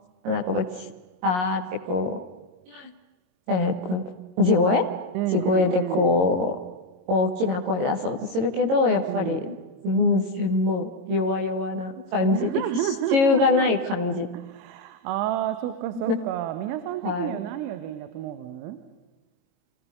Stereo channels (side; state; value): left; late; 22 ms